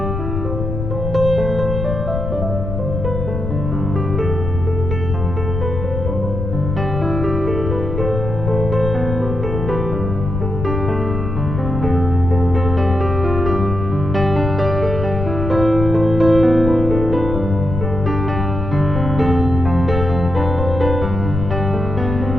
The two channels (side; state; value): left; noise; rumble, 4 dB below the sound